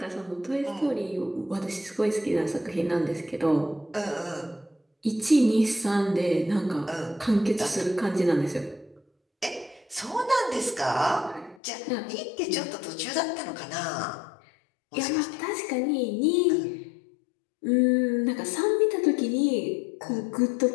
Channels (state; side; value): drops out; right; at 11.6 s